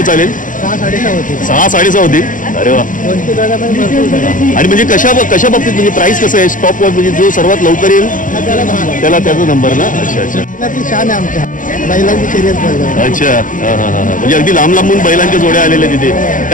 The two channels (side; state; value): right; late; 0.38 ms